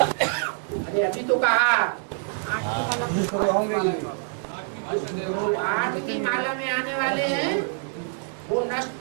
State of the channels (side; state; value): left; silent; 61 dB below the other